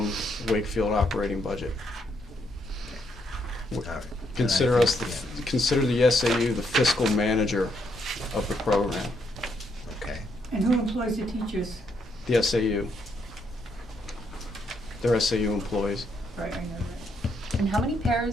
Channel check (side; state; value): both; normal; correlation 0.75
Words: Wakefield operating budget. All right. Consider us, consider the SAU the fiscal manager of the program, Okay. And who employs the teachers? the SAU. They're SAU employees. Right, I know that. And how many